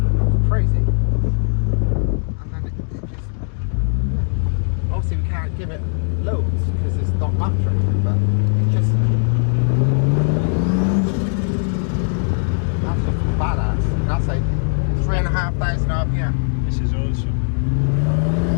It's crazy. And then it just, yeah. Obviously we can't give it loads because it's not battery, but it's just, that's just badass. And that's like 3,500 RPM. This is awesome.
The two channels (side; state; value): right; silent; digital silence